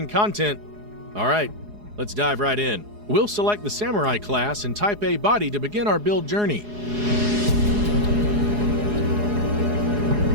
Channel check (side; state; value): left; late; 4.8 ms